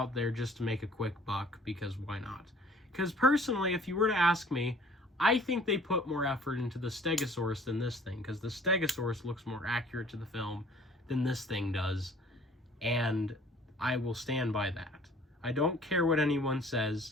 there just to make a quick buck, because why not? Because personally, if you were to ask me, I think they put more effort into the Stegosaurus than this thing, because the Stegosaurus looks more accurate to the film than this thing does, and I will stand by that. I don't care what anyone says.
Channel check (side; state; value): both; normal; correlation 0.53